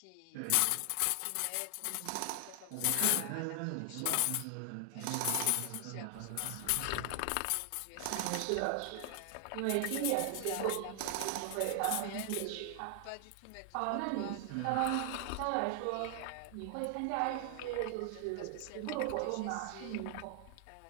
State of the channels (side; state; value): both; different; correlation 0.00